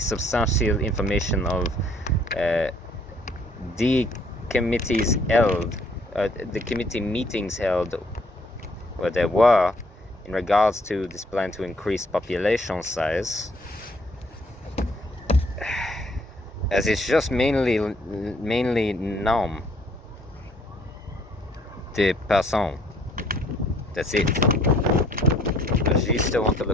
information of the committees held, the committee meetings held where there were in regards to this plan to increase population size, as it's just mainly nom de person. That's it. But she still wants to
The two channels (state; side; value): normal; both; correlation 0.63